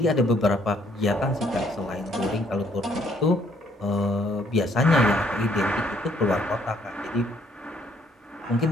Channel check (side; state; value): both; normal; correlation 0.66